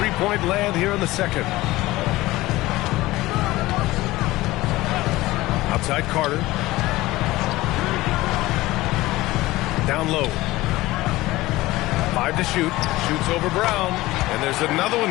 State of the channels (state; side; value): quieter; right; 18.5 dB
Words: land here in the second. Outside Carter. Down low. 5 to shoot. Shoots over Brown. And there's another